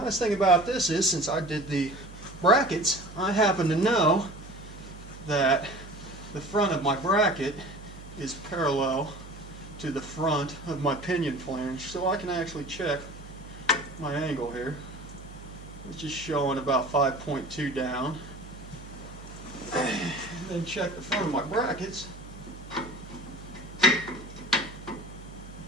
thing about this is, since I did the brackets, I happen to know that the front of my bracket is parallel to the front of my pinion flange, so I can actually check my angle here, which is showing about 5.2 down. And then check the front of my brackets,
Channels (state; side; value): noise; right; hum, 15 dB below the sound